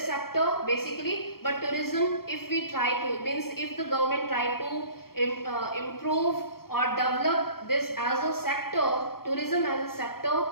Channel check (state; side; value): late; right; 0.94 ms